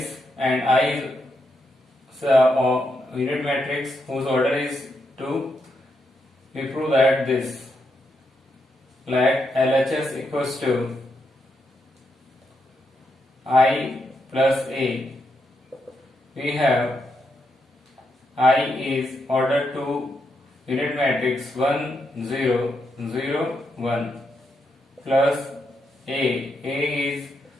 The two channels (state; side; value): normal; both; correlation 0.82